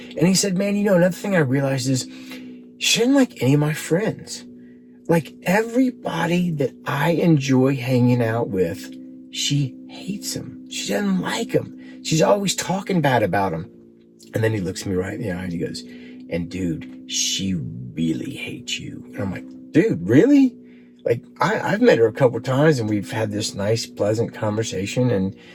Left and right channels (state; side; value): identical; both; correlation 1.00